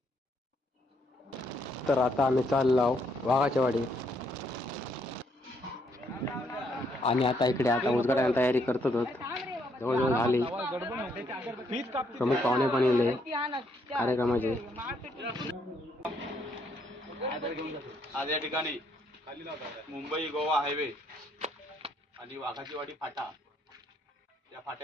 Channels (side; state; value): both; normal; correlation 0.72